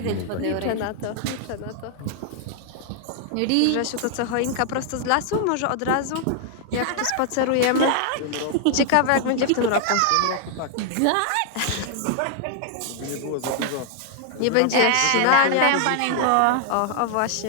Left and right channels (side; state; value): both; different; correlation 0.00